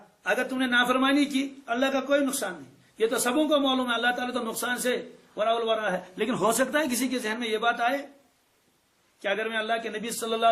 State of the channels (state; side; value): identical; both; correlation 1.00